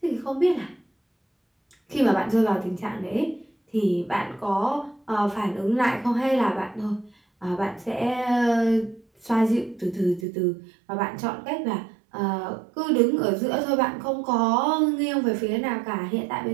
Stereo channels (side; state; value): left; drops out; at 10.2 s